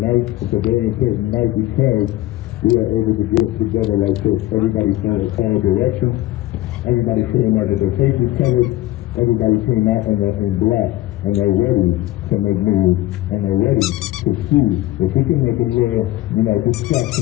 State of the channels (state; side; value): quieter; right; 16.4 dB